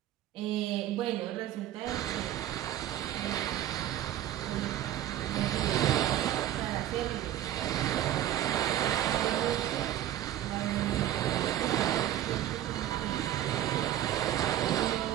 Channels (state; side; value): quieter; left; 12.5 dB